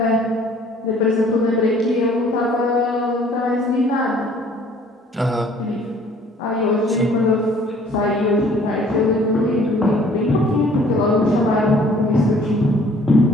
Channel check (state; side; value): normal; both; correlation 0.56